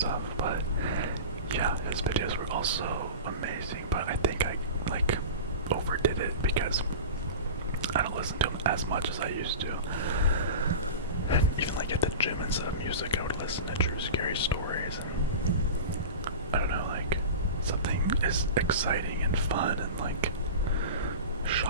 but yeah, his videos were also amazing, but I think I like overdid it because I don't listen to him as much as I used to. And even like at the gym, instead of music, I would listen to true scary stories. And I don't know, like, something is exciting and fun and like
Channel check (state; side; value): inverted; both; correlation -0.30